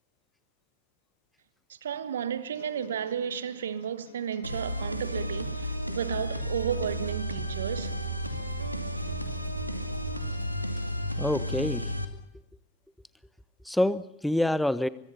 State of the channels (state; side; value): normal; both; correlation -0.07